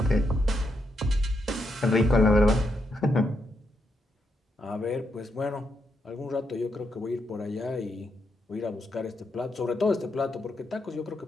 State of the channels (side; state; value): both; normal; correlation 0.81